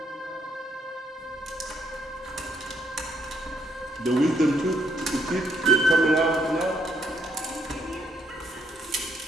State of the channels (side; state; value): both; normal; correlation 0.72